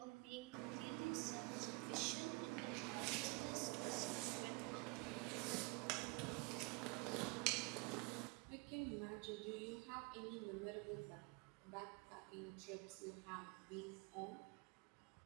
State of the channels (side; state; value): left; quieter; 27.7 dB